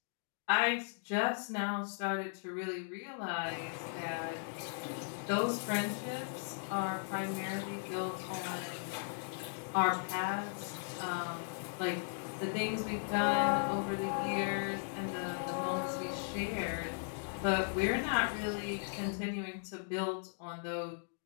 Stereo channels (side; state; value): right; silent; digital silence